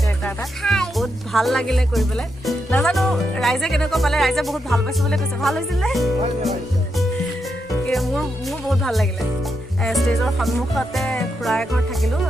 কেৰেক্টাৰ এটা, বহুত ভাল লাগিলে কৰি পেলাই। নাজানো ৰাইজে কেনেকুৱা পালে, ৰাইজে বহুত ভাল পাইছোঁ বুলি কৈছে। ভাল হৈছিলে? মোৰ বহুত ভাল লাগিলে। ষ্টেজৰ সন্মুখতে খুৰা এঘৰত থাকিলোঁ।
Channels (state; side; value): normal; both; correlation 0.83